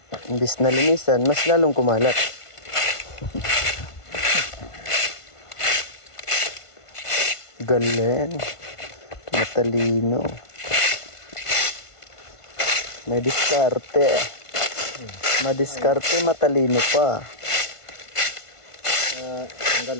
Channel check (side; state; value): right; late; 1.5 ms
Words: Imbis na linisan, mas lalong kumalat. Galing. Matalino. May diskarte. Madiskarte, matalino pa. Tanggal